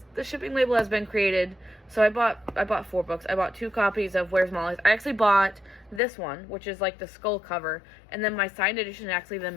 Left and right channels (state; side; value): drops out; right; at 6.0 s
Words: The shipping label has been created. So I bought 4 books. I bought 2 copies of Where's Molly's. I actually bought this one, which is like the skull cover, and then my signed edition is actually the